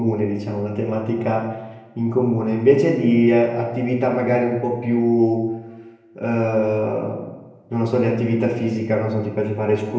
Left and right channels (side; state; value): both; identical; correlation 1.00